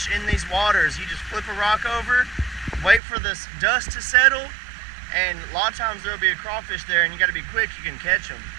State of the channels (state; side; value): drops out; left; at 3.0 s